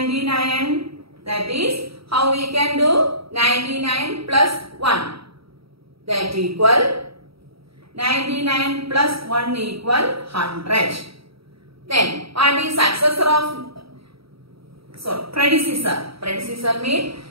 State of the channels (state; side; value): late; left; 0.76 ms